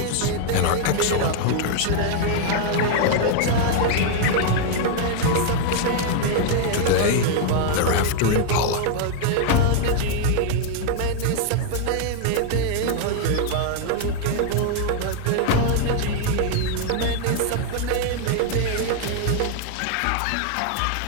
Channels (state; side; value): different; both; correlation 0.00